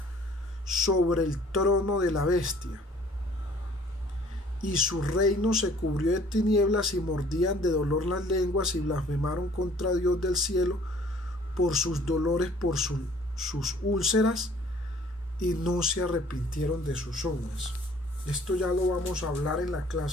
sobre el trono de la bestia, y su reino se cubrió de tinieblas, y mordían de dolor las lenguas, y blasfemaron contra Dios del cielo por sus dolores, por sus úlceras, y no se arrepintieron de sus obras. Esto ya lo vamos a hablar en la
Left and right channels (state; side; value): normal; both; correlation 0.55